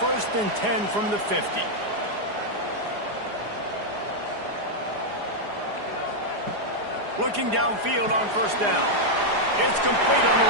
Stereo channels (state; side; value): late; left; 4.9 ms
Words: and 10 from the 50. Looking downfield on 1st down. It's complete on the